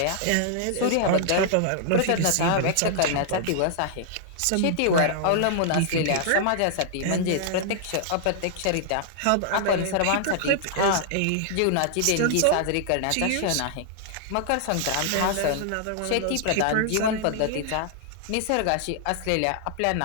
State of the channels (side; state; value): both; different; correlation -0.01